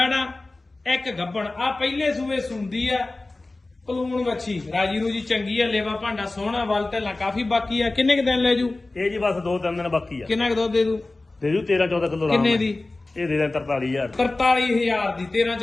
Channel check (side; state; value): right; quieter; 3.1 dB